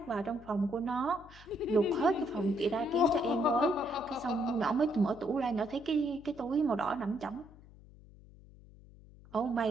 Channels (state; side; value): noise; left; hum, 22 dB below the sound